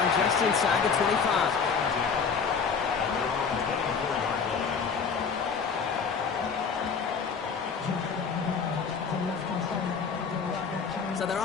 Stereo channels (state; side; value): quieter; right; 5.8 dB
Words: just inside the 25. So their